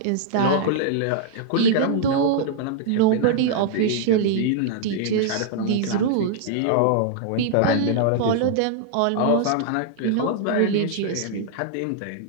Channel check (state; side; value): different; both; correlation -0.01